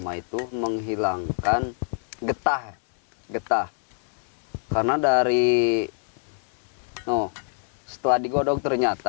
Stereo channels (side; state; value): right; silent; 56 dB below the other